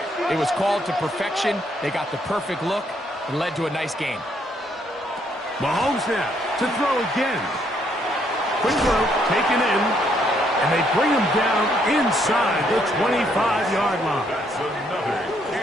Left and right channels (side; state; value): both; normal; correlation 0.71